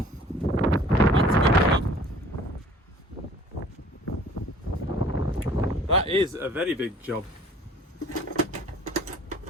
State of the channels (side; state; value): both; normal; correlation 0.51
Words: job. That is a very big job.